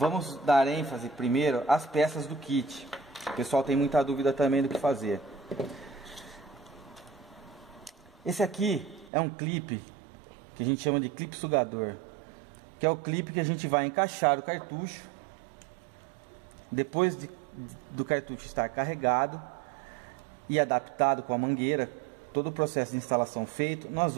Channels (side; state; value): left; drops out; at 9.1 s